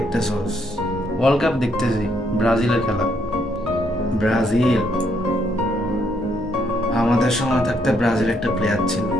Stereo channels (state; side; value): normal; both; correlation 0.73